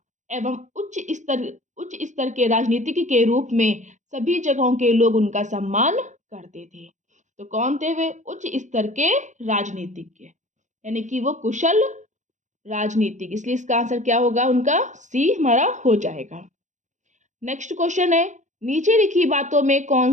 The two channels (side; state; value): left; late; 0.35 ms